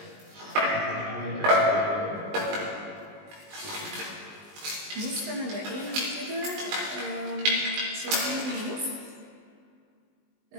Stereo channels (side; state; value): left; late; 20 ms